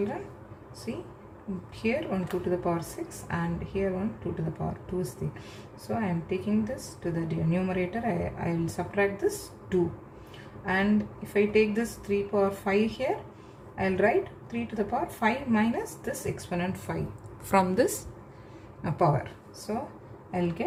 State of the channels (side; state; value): both; identical; correlation 1.00